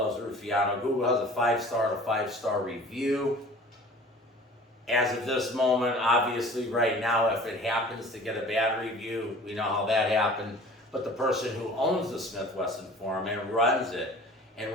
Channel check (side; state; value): both; normal; correlation 0.45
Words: Ruffiano. Google has a 5-star to 5-star review. As of this moment, obviously right now, if it happens to get a bad review, we know how that happened. But the person who owns the Smith-Wesson forum and runs it, and